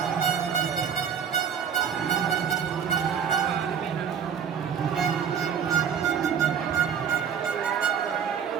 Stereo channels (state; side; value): quieter; left; 7.6 dB